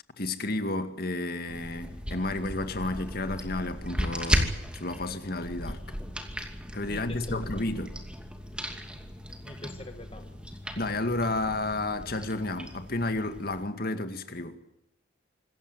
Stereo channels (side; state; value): both; normal; correlation 0.50